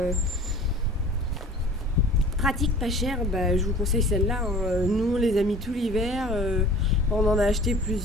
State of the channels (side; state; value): both; normal; correlation 0.45